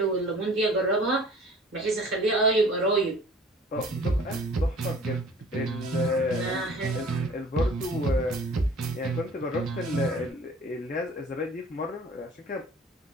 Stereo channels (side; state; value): both; normal; correlation 0.49